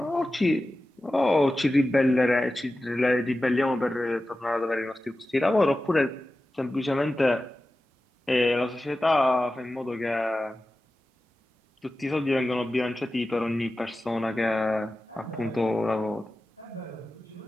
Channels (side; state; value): both; normal; correlation 0.94